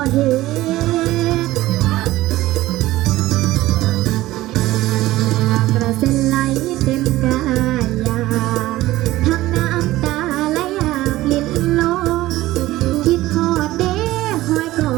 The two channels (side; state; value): left; quieter; 16.8 dB